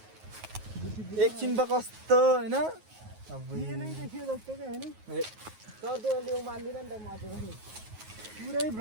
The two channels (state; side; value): late; left; 9.4 ms